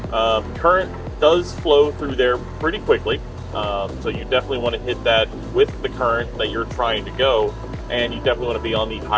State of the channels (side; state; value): both; identical; correlation 1.00